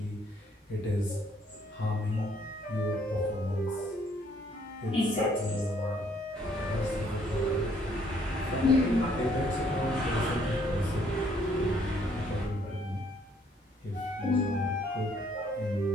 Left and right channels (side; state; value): both; normal; correlation 0.66